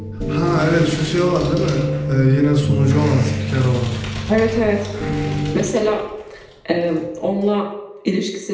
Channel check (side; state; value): both; identical; correlation 1.00